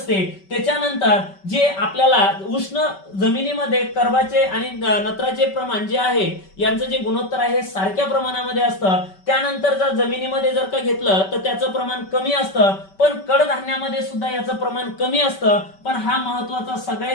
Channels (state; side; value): late; right; 5.2 ms